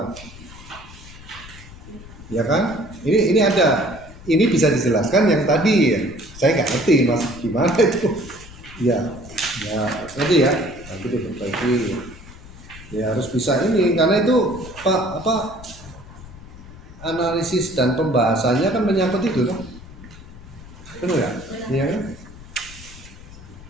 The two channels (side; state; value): left; noise; rumble, 17 dB below the sound